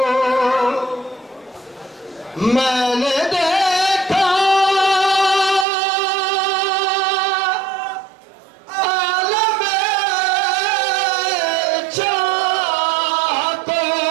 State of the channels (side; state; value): left; drops out; at 5.7 s